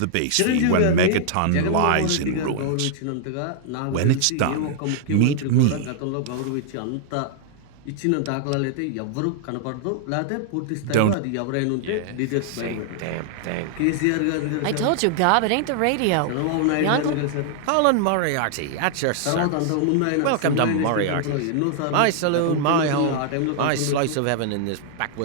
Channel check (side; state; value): both; different; correlation -0.01